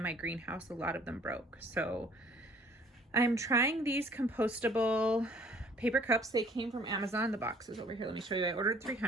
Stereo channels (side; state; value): both; normal; correlation 0.56